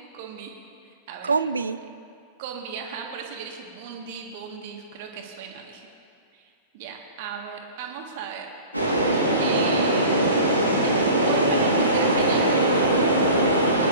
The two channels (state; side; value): inverted; both; correlation -0.41